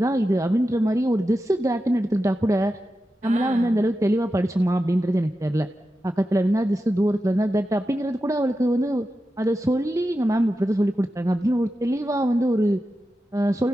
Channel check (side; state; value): both; normal; correlation 0.91